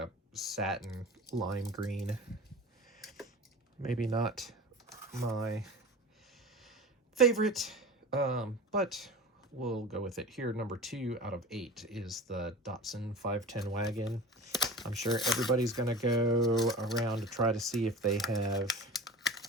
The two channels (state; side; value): normal; both; correlation 0.35